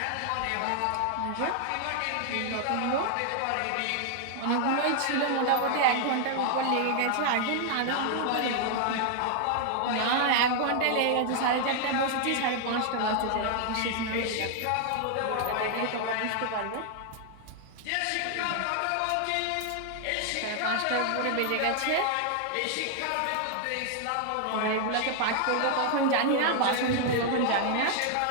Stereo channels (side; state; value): both; different; correlation 0.00